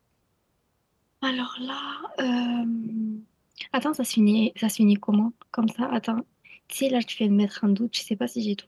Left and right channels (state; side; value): identical; both; correlation 1.00